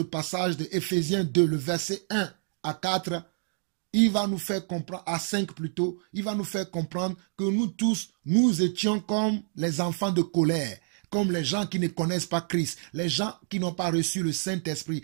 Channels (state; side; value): silent; left; digital silence